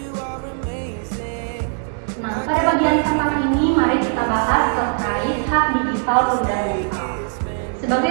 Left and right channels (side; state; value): left; silent; 62 dB below the other